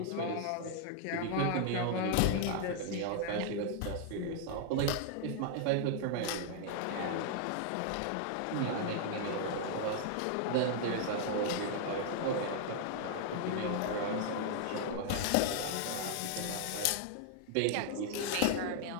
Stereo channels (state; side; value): different; both; correlation 0.00